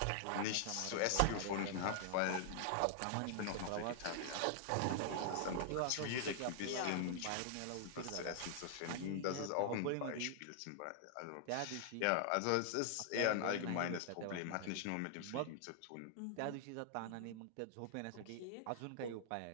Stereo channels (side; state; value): both; different; correlation -0.01